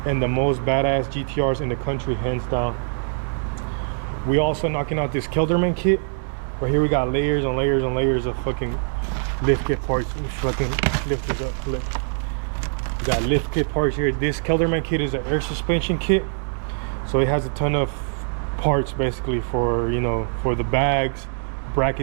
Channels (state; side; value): silent; left; digital silence